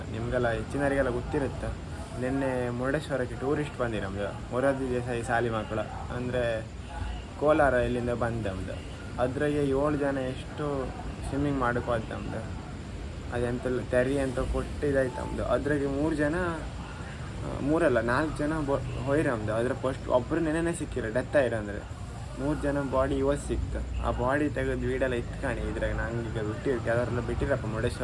ನಿಮಗೆಲ್ಲ ಹೆಚ್ಚಿನವರಿಗೆಲ್ಲ ಗೊತ್ತಿರುತ್ತೆ, ನಿನ್ನೆ ಮುರುಡೇಶ್ವರಕ್ಕೆ ಟೂರಿಸ್ಟ್ ಬಂದಿ ನಮ್ಮದು ಮೊರಾರ್ಜಿ ದೇಸಾಯಿ ಶಾಲೆ ಮಕ್ಕಳು ಅಂದರೆ ಕೋಲಾರ ಇಲ್ಲಿಂದ ಬಂದು ನಮ್ಮದು. ಅದ್ರಾಗೆ 7 ಜನ ಎಷ್ಟು ಸ್ವಿಮ್ಮಿಂಗ್ ಮಾಡೋಕೆ ಹೋದ್ ನಮ್ಮದು. ಅದೆಂತೆಲ್ಲ ತೆರಿ ಅಂತ ಕೊಟ್ಟಿದ್ದಾಯ್ತು ನಮ್ಮದು. ಅದ್ರಾಗೆ 4 ಜನ ಹೋಯ್ರಿ ನಮ್ಮದು. ಅದ್ರ ಫಸ್ಟ್ ಒಬ್ಬರು ನೆನೆನೇ ಸಿಕ್ಕಿರೋ, ಡೆತ್ ಆಯ್ರು ಅಂದರೆ 3 ಜನ ಬಾಡಿ ಇವತ್ತು ಸಿಕ್ತು. ಆ ಬಾಡಿ ತೆಗೆದು ವೀಡೆಲ್ಲ ಇಟ್ಕಾಣಿ. ಇದ್ರಾಗ ನಂಗೆ ಈಗ ಬಿಟ್ಟಿರ್ತೀವಿ, ಅದರೆಲ್ಲ ಬಿಟ್ಟಿರಪ್ಪ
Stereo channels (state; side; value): identical; both; correlation 1.00